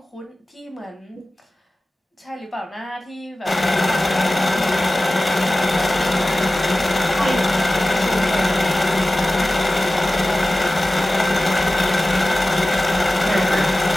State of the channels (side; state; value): both; normal; correlation 0.96